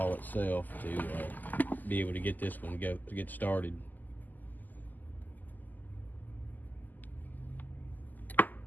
itself to be able to get this one to get started.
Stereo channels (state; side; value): late; right; 0.084 ms